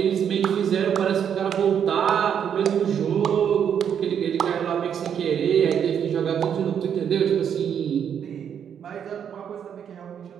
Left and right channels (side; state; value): left; quieter; 8.3 dB